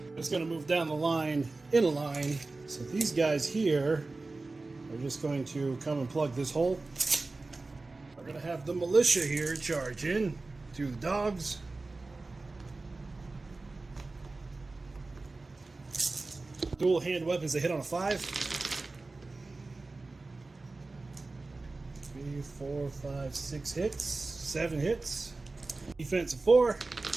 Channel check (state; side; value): quieter; left; 3.4 dB